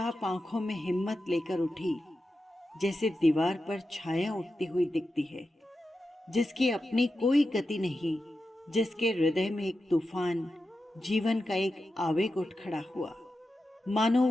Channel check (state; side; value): normal; both; correlation 0.90